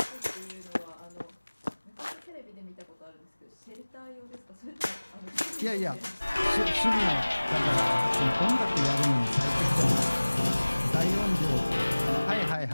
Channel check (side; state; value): both; inverted; correlation -1.00